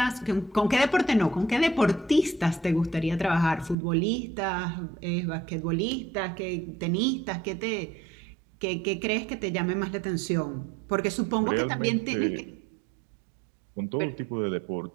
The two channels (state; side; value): drops out; left; at 3.8 s